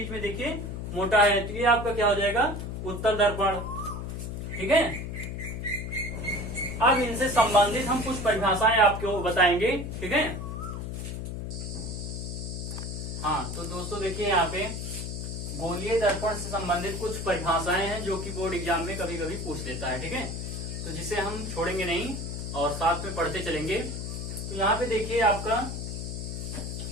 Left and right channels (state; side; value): noise; left; hum, 5 dB below the sound